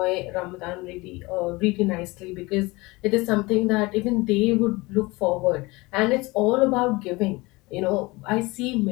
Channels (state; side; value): quieter; right; 23.1 dB